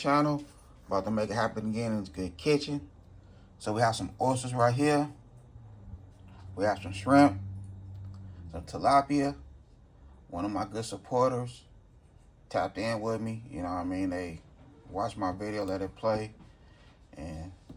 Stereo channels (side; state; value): both; identical; correlation 1.00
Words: About to make it happen again in this good kitchen. So we have some oysters right here. We have some shrimp, some tilapia. One of my good supporters tapped in with me. You know what I mean? They watched my video, let it play, and